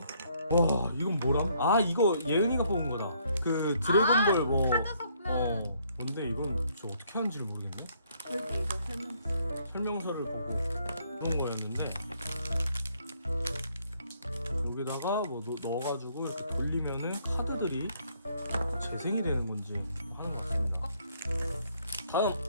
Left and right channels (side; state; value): both; inverted; correlation -0.67